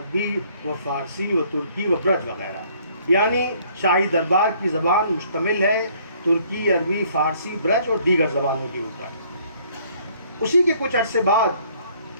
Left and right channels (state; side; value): inverted; both; correlation -0.62